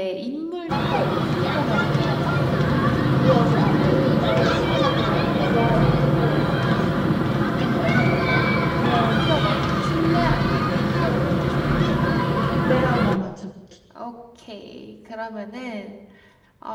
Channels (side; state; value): both; identical; correlation 1.00